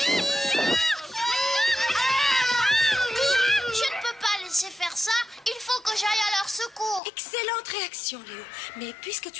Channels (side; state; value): right; drops out; at 7.0 s